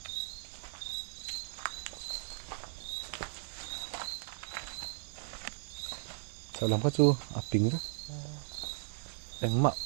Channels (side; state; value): left; silent; digital silence